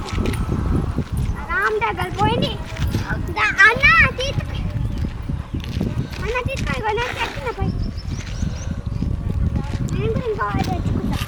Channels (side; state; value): both; identical; correlation 1.00